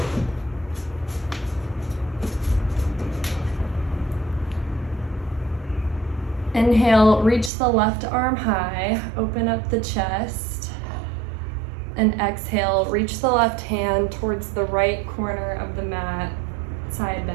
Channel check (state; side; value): drops out; left; at 7.5 s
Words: Inhale, reach the left arm high, open up the chest. And exhale, reach the left hand towards the right corner of the mat, side